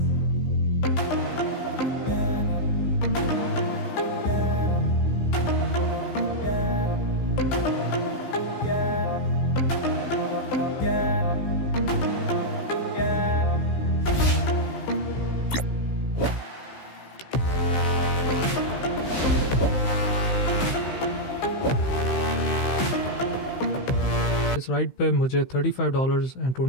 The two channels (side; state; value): right; late; 15 ms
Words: इस राइड पे मुझे